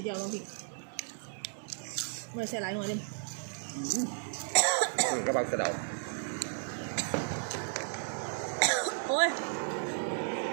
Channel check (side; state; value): left; silent; 55 dB below the other